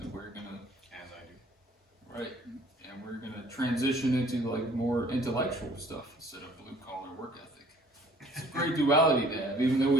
we're gonna As I do. Right, and we're gonna transition into like more intellectual stuff instead of blue collar work ethic. It's a great duality to have, even though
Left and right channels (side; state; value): both; normal; correlation 0.56